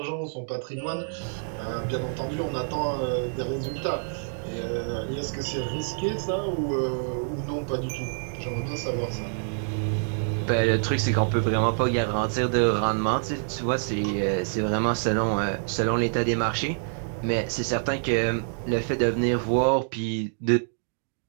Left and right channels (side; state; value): left; silent; digital silence